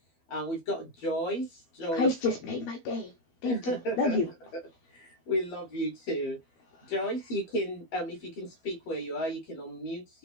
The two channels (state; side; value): late; right; 12 ms